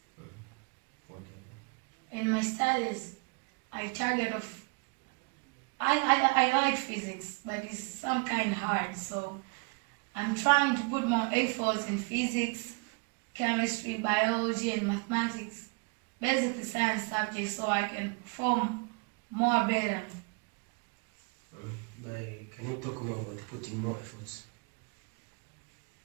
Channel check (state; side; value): quieter; left; 31.5 dB